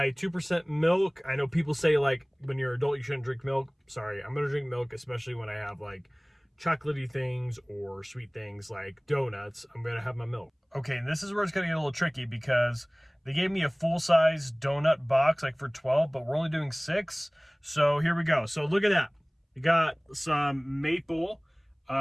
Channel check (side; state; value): both; identical; correlation 1.00